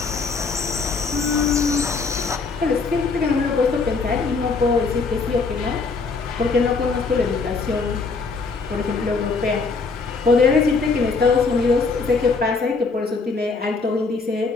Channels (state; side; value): quieter; right; 4.3 dB